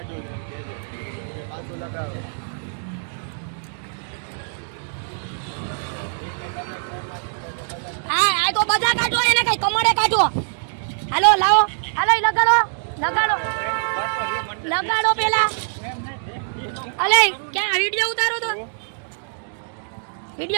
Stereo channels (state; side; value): silent; left; digital silence